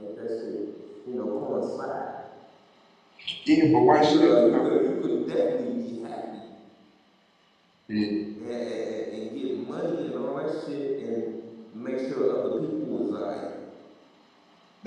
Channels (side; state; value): both; identical; correlation 1.00